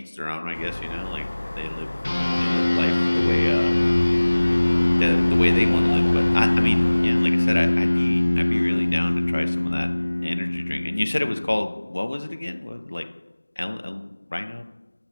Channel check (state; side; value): inverted; both; correlation -1.00